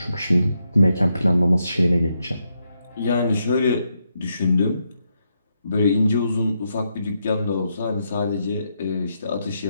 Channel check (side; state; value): both; inverted; correlation -0.81